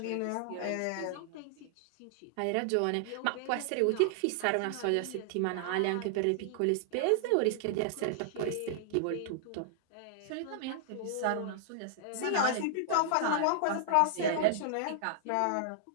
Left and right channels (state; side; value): different; both; correlation -0.01